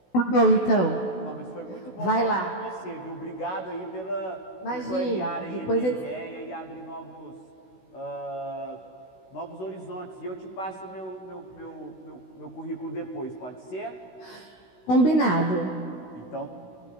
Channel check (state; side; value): late; right; 16 ms